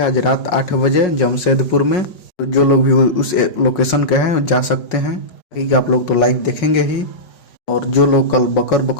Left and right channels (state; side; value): late; right; 5.5 ms